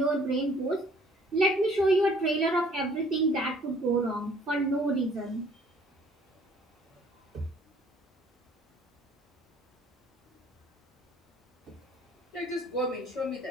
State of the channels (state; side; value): normal; both; correlation 0.57